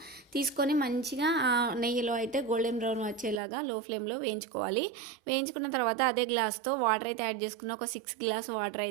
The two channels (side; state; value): left; drops out; at 3.4 s